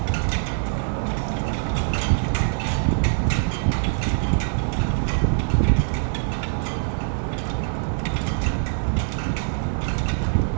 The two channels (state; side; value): silent; left; digital silence